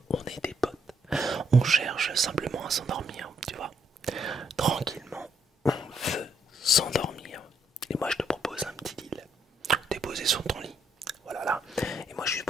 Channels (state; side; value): normal; both; correlation 0.74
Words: On est des potes. On cherche simplement à s'endormir, tu vois. Tranquillement, on veut s'endormir. Et moi je te propose un petit deal. T'es posé sur ton lit. Voilà là. Et moi je suis